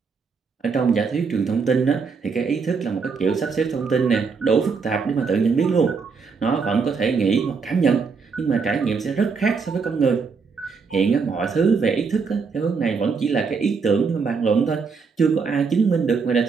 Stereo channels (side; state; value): left; quieter; 5.2 dB